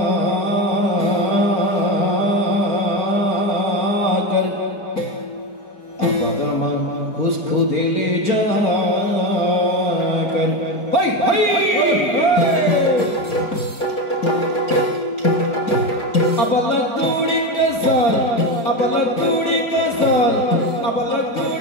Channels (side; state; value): right; late; 4.4 ms